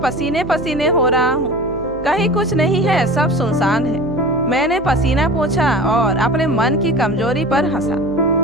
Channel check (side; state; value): right; noise; hum, 17 dB below the sound